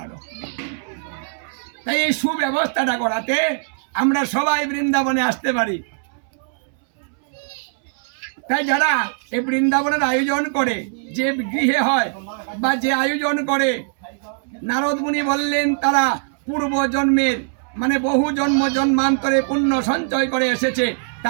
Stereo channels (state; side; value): silent; left; 65 dB below the other